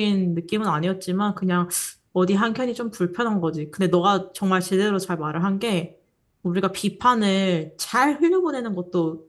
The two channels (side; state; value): both; identical; correlation 1.00